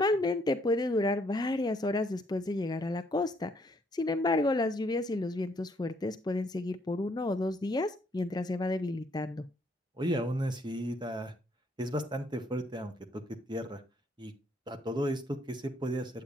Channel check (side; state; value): both; normal; correlation 0.69